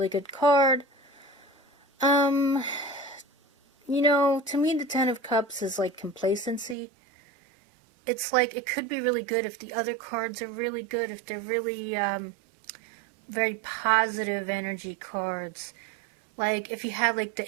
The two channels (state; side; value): drops out; left; at 6.8 s